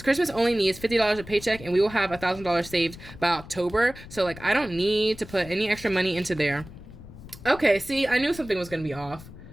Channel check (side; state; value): left; noise; rumble, 16 dB below the sound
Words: Christmas only needs $50 a paycheck, and we will have $1,000 saved by October. So like, I don't need to put any extra money into there. Okay, see, I knew something was gonna be off.